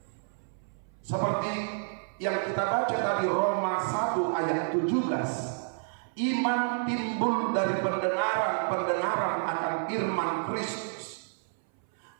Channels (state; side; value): silent; left; 58 dB below the other